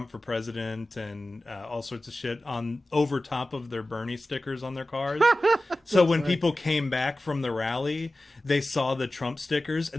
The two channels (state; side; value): normal; both; correlation 0.95